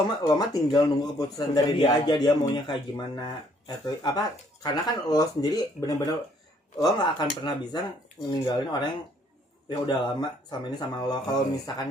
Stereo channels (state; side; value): normal; both; correlation 0.65